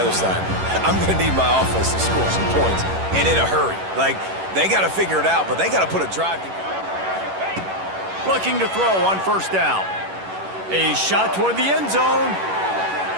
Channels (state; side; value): late; left; 11 ms